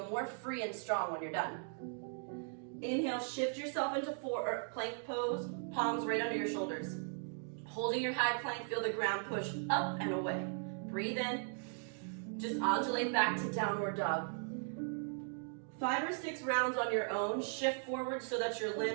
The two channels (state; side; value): silent; left; 52 dB below the other